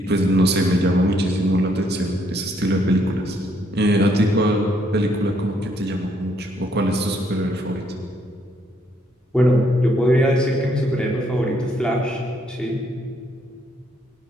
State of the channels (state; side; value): normal; both; correlation 0.70